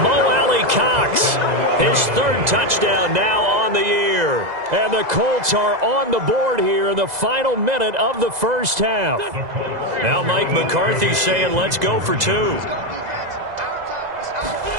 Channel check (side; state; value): left; late; 2.0 ms